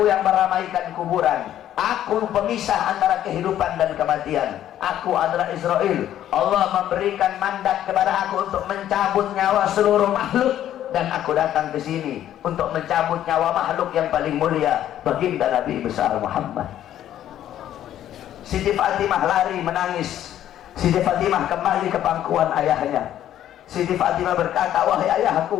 yang meramaikan kuburan, aku pemisah antara kehidupan dan kematian. Aku adalah Israel. Allah memberikan mandat kepada aku untuk mencabut nyawa seluruh makhluk, dan aku datang ke sini untuk mencabut nyawa makhluk yang paling mulia, baginda Nabi besar Muhammad. Siti Fatimah lari menangis. Siti Fatimah kembali ke pangkuan ayahnya. Siti Fatimah berkata, wahai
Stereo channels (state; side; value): quieter; right; 11.6 dB